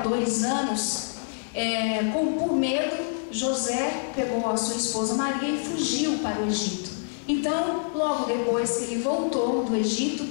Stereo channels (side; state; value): right; silent; 60 dB below the other